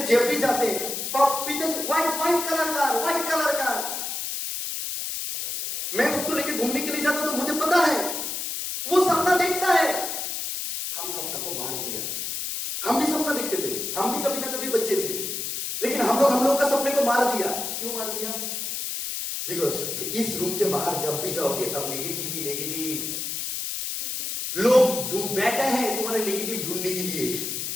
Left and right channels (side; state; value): left; noise; hiss, 4 dB below the sound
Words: जब भी जाते हैं व्हाइट कलर का। मैं उसको लेके घूमने के लिए जाता तो मुझे पता है वो सपना देखता है। हम सपना को मार दिया। हम भी सपना देखते थे, हम भी कभी ना कभी बच्चे थे, लेकिन हम लोग का सपने को मार दिया। क्यों मार दिया? बिकॉज इस रूम के बाहर जब भी जाओगे तब नेगेटिव लोग बैठे हैं तुम्हारे नेगेटिव ढूंढने के लिए।